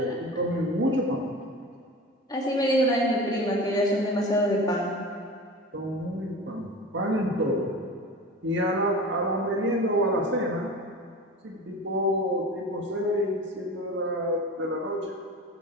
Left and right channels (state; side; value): normal; both; correlation 0.34